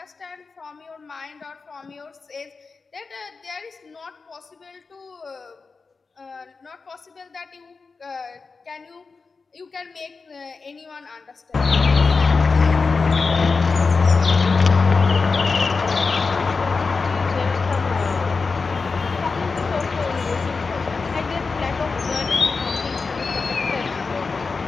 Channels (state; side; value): quieter; right; 4.5 dB